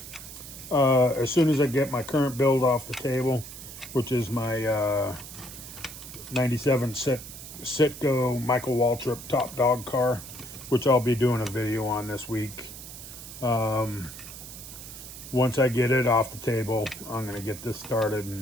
as soon as I get my current build off the table, which is my 97 Citgo Michael Waltrip top dog car, which I'll be doing a video on this week. Once I get it off the table, I'm going to get this started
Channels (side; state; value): right; noise; hiss, 13 dB below the sound